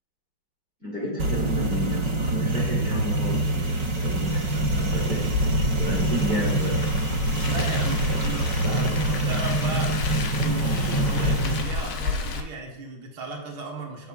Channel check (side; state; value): left; late; 5.4 ms